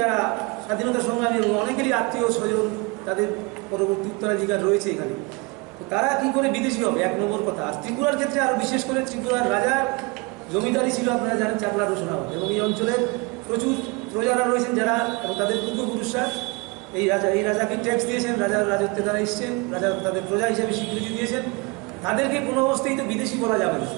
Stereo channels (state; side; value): quieter; left; 27.6 dB